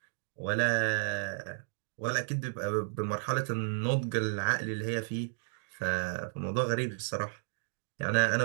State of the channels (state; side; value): silent; left; digital silence